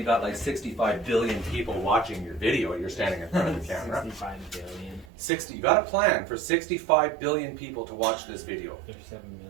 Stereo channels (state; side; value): drops out; left; at 5.1 s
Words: got like 65 billion people watching your video. You're standing in front of the camera. 65 billion. 60, you got a plan for 65 billion people to watch this video. There's 7